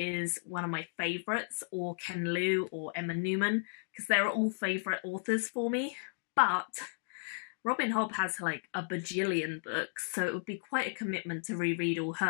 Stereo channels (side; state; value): right; silent; digital silence